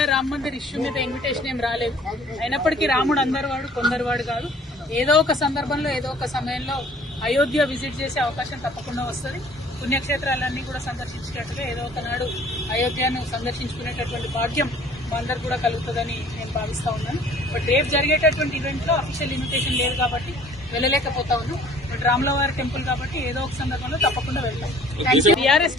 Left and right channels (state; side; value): normal; both; correlation 0.53